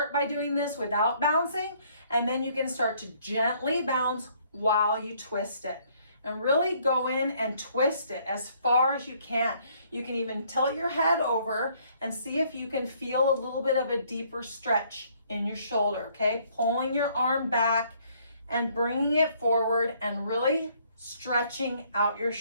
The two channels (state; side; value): inverted; both; correlation -0.64